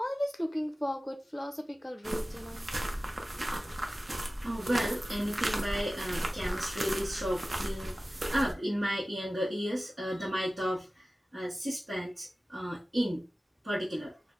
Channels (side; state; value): both; normal; correlation 0.96